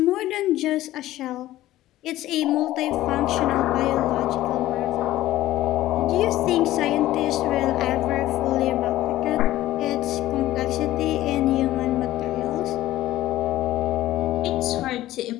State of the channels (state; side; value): quieter; right; 15.1 dB